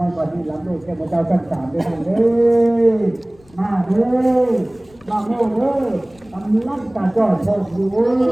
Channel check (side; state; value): left; noise; rumble, 29 dB below the sound